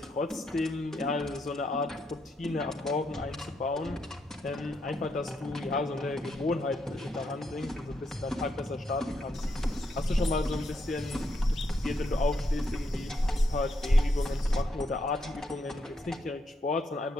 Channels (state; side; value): normal; both; correlation 0.79